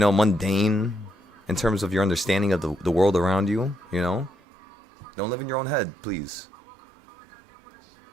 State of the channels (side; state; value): left; drops out; at 4.3 s